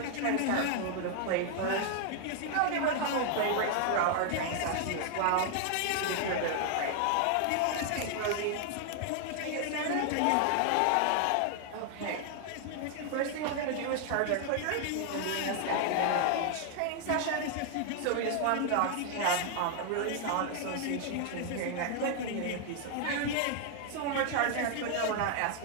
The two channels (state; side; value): different; both; correlation 0.00